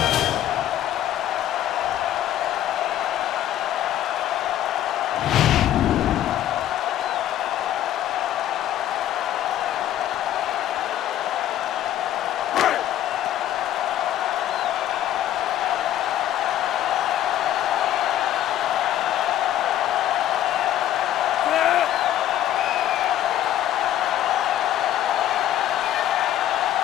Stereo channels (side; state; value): right; quieter; 12.1 dB